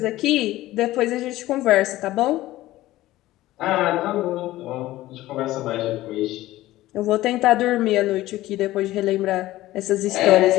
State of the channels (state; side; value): quieter; right; 16.3 dB